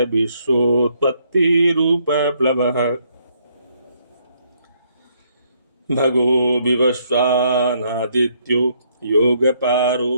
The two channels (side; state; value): both; inverted; correlation -0.71